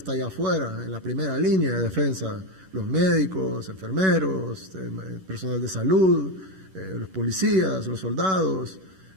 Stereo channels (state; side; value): late; left; 11 ms